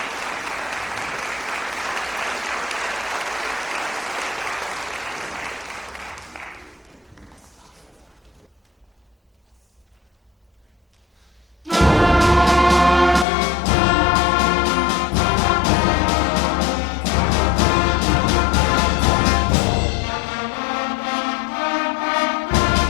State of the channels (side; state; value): right; drops out; at 13.2 s